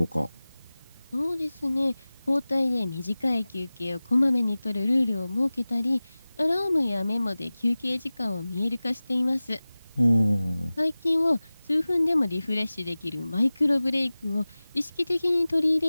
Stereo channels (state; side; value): inverted; both; correlation -0.98